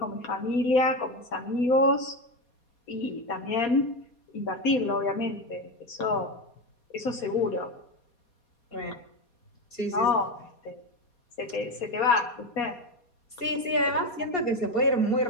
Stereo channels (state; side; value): late; right; 4.2 ms